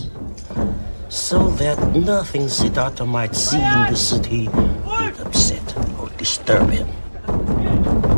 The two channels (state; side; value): inverted; both; correlation -1.00